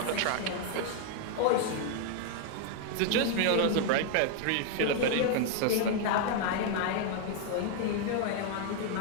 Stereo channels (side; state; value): both; different; correlation 0.00